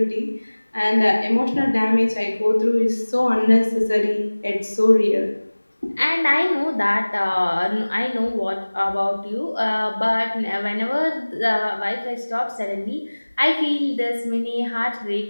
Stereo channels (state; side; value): inverted; both; correlation -1.00